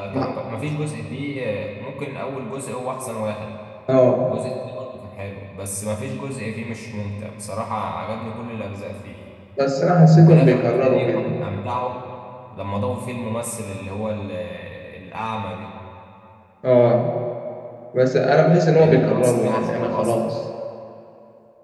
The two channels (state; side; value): identical; both; correlation 1.00